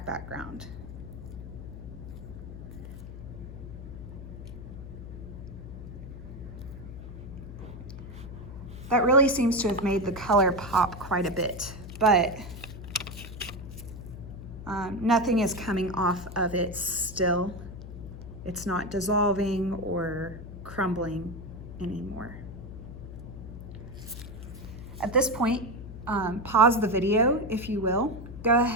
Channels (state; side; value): noise; left; hum, 11 dB below the sound